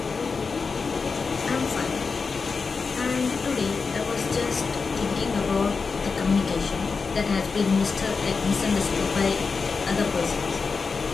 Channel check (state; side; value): quieter; right; 4.8 dB